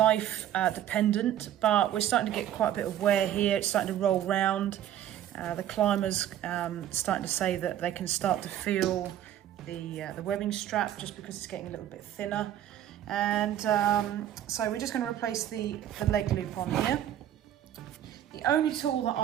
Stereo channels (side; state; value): left; quieter; 11.4 dB